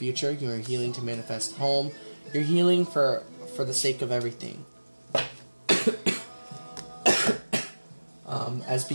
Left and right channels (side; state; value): both; inverted; correlation -1.00